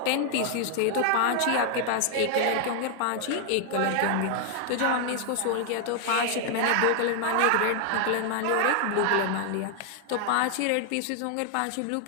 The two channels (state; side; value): different; both; correlation 0.00